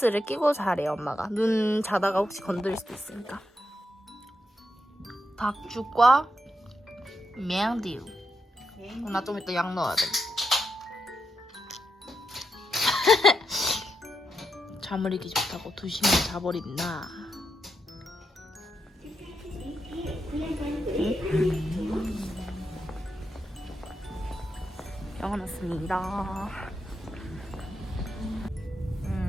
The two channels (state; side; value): normal; both; correlation 0.83